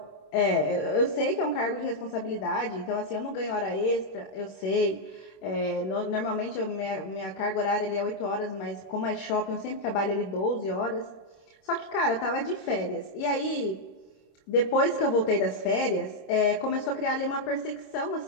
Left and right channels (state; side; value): late; right; 26 ms